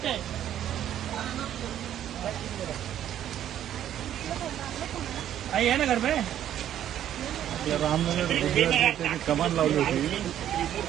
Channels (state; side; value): quieter; left; 11.0 dB